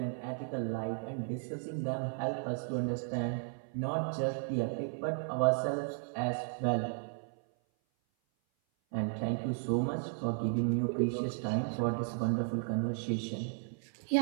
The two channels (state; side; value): silent; left; 55 dB below the other